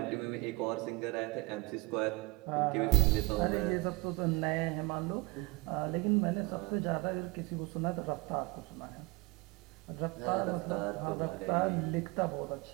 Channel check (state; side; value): quieter; left; 24.3 dB